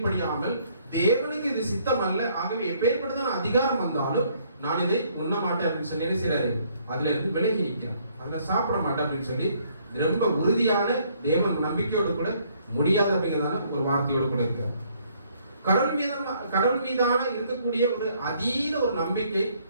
தேவனுக்கு இது சித்தம் அல்ல, ஆகவே எப்பேற்பட்டதான அதிகாரம் வந்தாலும் நான் இதை உண்ண மாட்டேன் அப்படின்னு சொல்லி என்ன செய்யறாரு, அதுல இருந்து விலகி நிற்கிறான். அதுல சாப்பிட மாட்டேன் அப்படின்னு சொல்லி ரொம்ப உறுதியான தேவன் நம்பிக்கையோடு கூட முடியாது அப்படிங்கிறதான ஒரு வார்த்தையோடு கூட இருக்கிறார். கடவுள் மீதான இருக்கக்கூடிய ஒரு அதீத ஒரு நம்பிக்கை,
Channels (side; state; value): both; inverted; correlation -0.65